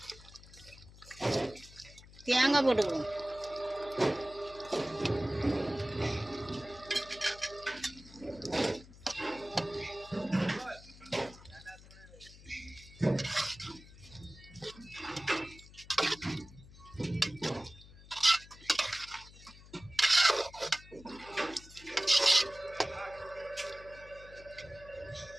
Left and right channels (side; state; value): left; noise; hum, 20 dB below the sound